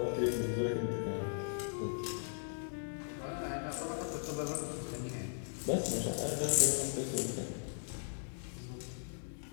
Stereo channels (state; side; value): silent; right; digital silence